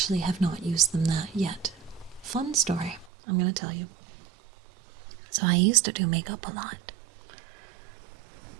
have not used them that yet. Fun story, I'm gonna tell you. So I used to do makeup a lot.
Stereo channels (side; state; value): left; drops out; at 3.1 s